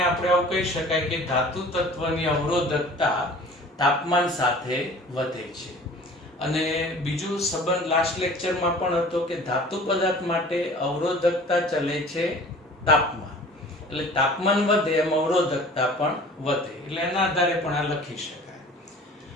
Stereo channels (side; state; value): both; normal; correlation 0.45